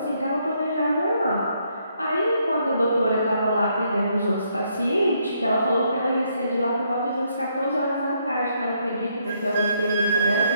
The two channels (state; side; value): inverted; both; correlation -0.73